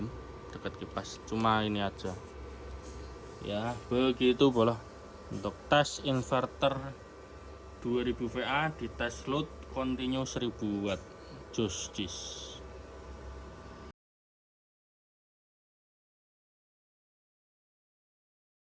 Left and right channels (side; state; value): both; identical; correlation 1.00